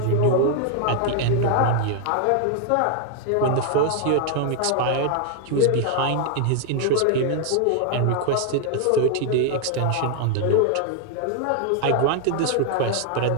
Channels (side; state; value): both; different; correlation 0.00